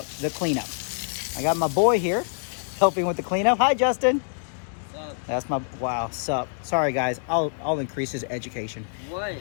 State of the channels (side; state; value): right; silent; digital silence